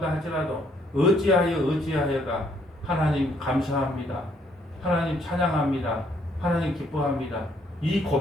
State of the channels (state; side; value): normal; both; correlation 0.68